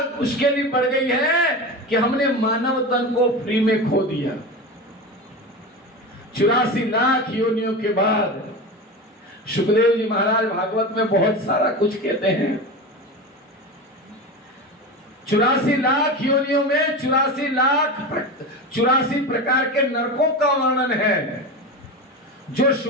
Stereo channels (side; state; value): both; normal; correlation 0.25